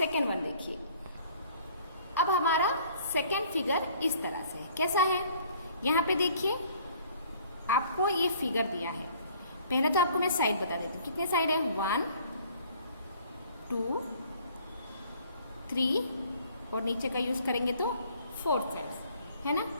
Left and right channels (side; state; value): both; inverted; correlation -0.55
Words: वन देखिए। अब हमारा सेकेंड फिगर इस तरह से कैसा है, यहाँ पे देखिए आपको ये फिगर दिया है। पहले तो आपको मैं साइड बता देती हूँ, कितने साइड है, 1 2 3 और नीचे का यूज करेंगे तो 4 साइड्स, है ना।